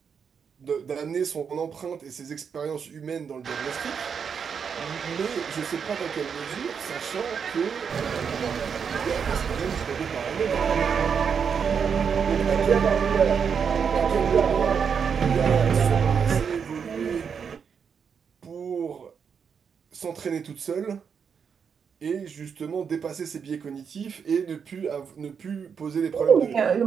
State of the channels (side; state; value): left; quieter; 6.7 dB